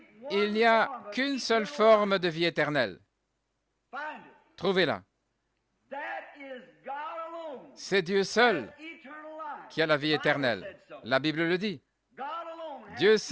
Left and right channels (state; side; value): identical; both; correlation 1.00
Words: il n'y a qu'une seule forme de vie éternelle. Trouvez-la. C'est Dieu seul qui a la vie éternelle. La Bible le dit. Dieu